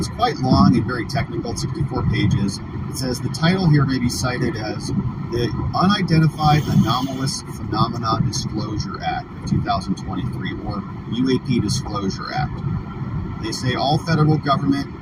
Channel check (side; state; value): both; identical; correlation 1.00